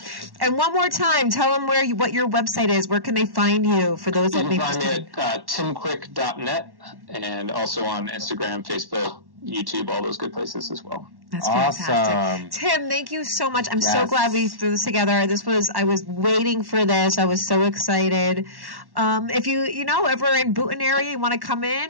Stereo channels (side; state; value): left; late; 1.1 ms